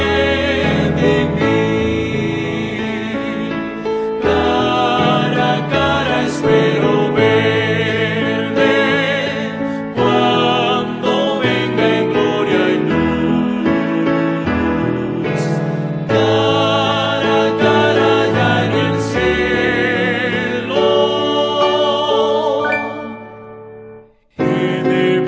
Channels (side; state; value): both; identical; correlation 1.00